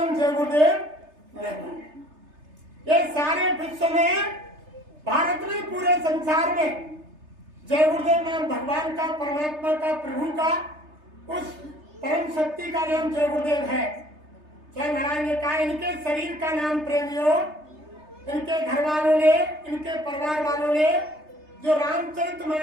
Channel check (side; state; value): left; late; 3.3 ms